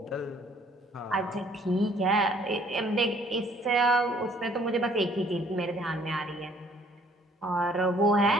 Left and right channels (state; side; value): normal; both; correlation 0.60